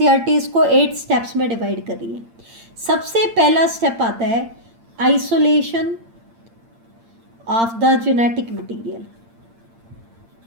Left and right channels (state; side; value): late; left; 8.8 ms